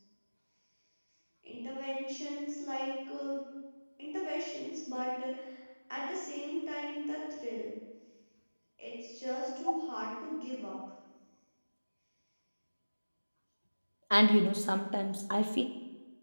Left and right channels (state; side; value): inverted; both; correlation -1.00